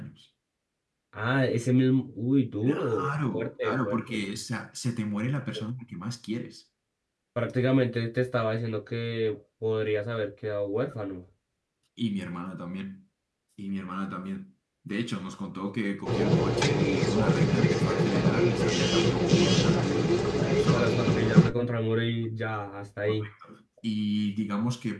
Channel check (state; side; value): identical; both; correlation 1.00